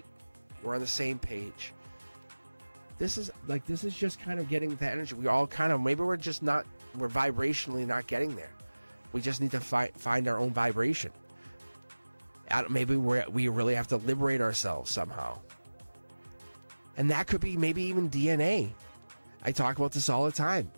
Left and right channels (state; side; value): inverted; both; correlation -1.00